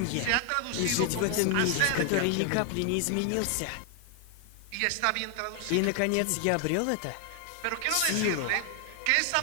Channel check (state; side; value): different; both; correlation 0.00